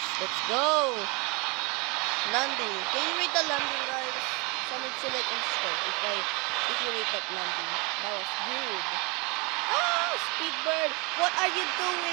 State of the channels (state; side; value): quieter; left; 28.8 dB